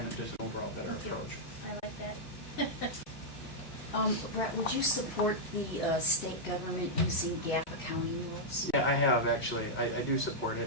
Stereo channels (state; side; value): late; right; 2.7 ms